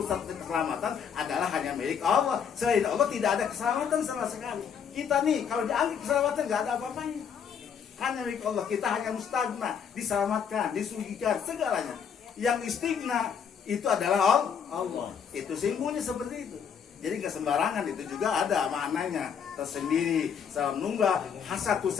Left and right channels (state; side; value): quieter; right; 7.3 dB